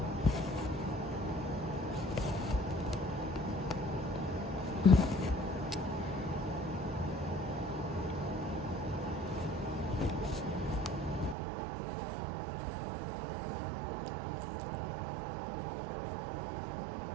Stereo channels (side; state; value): left; drops out; at 11.4 s